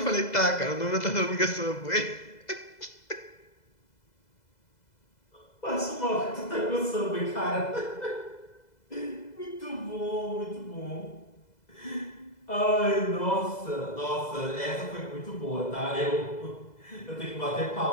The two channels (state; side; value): late; right; 2.0 ms